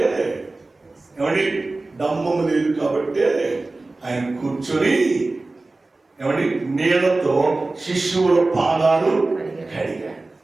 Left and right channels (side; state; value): left; quieter; 3.2 dB